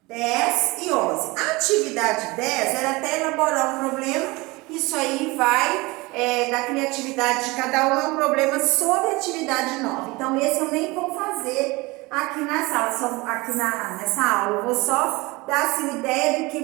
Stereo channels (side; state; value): left; quieter; 23.3 dB